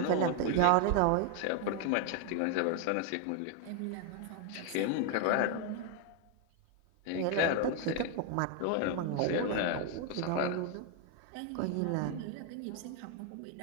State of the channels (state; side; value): different; both; correlation 0.01